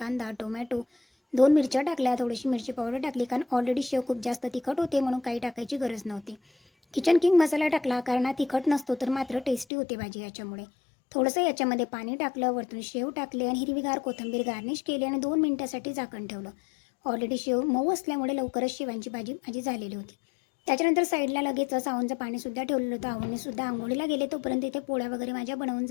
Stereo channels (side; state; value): right; drops out; at 9.7 s